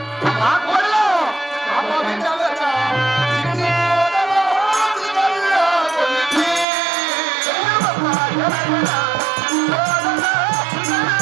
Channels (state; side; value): drops out; left; at 6.7 s